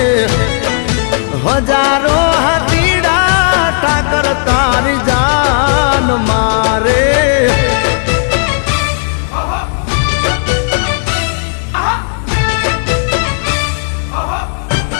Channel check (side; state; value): right; silent; digital silence